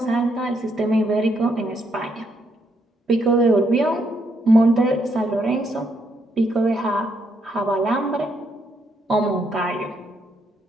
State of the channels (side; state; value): both; normal; correlation 0.75